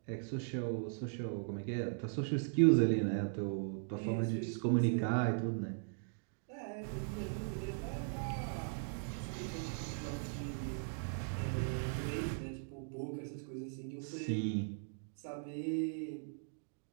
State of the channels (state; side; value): silent; left; digital silence